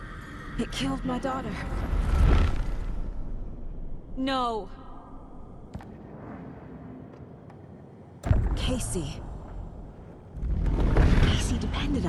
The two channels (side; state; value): both; identical; correlation 1.00